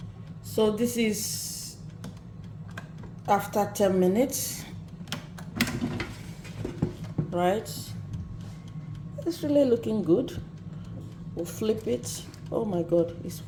So this is after 10 minutes, right? It's really looking good. We'll flip it. Oh my God, it's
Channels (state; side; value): identical; both; correlation 1.00